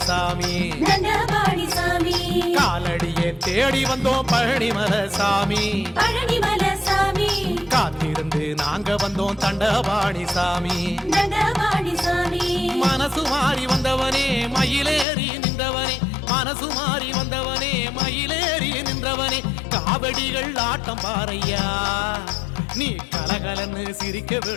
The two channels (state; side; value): drops out; right; at 15.1 s